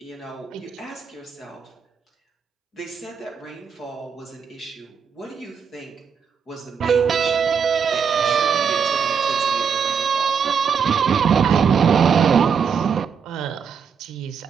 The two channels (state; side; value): quieter; left; 6.6 dB